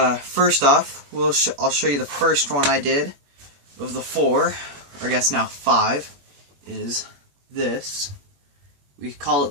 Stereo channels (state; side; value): late; left; 21 ms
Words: off, I'll show you the first one I did of the four, or I guess now 5, is this. We call